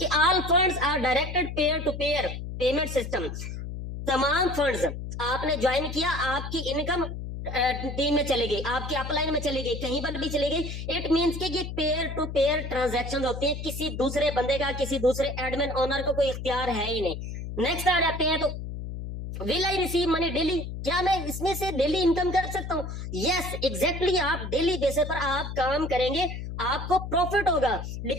all funds are directed peer to peer payment system. तमाम फंड्स आपने ज्वाइन किया, आपकी इनकम टीम में चली गई, आपकी अपलाइन में चली गई, कहीं पर भी चली गई। इट मींस कि ये पेयर टू पेयर ट्रांजैक्शन होते हैं, किसी दूसरे बंदे का, किसी दूसरे एडमिन ओनर को कोई इख्तियार है ही नहीं। नेक्स्ट आ जाते हैं, तो will I receive money daily, क्या मैं इसमें से डेली इनकम कर सकता हूँ? यस एग्जैक्टली, आप डेली बेसिस पर आप काम करेंगे, आपको प्रॉफिट होगा,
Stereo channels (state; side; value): noise; left; hum, 7 dB below the sound